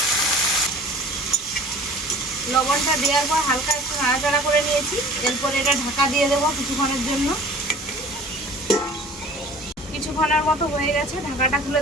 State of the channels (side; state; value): both; normal; correlation 0.46